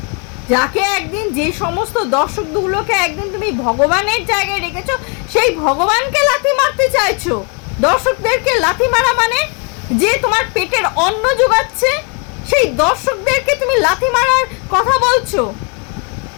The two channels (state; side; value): quieter; right; 36.3 dB